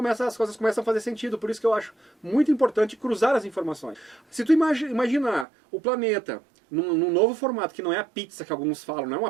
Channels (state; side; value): drops out; left; at 5.5 s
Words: as coisas começam a fazer sentido, por isso que eu acho muito importante cruzar as informações. Se tu imaginar o planeta num novo formato, que não é a pizza que alguns falam, não é